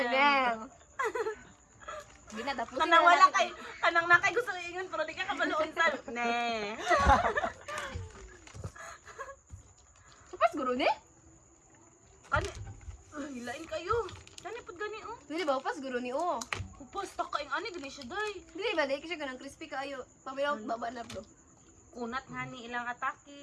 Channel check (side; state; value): both; identical; correlation 1.00